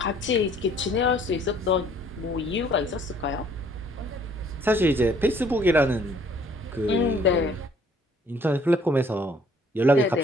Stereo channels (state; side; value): normal; both; correlation 0.59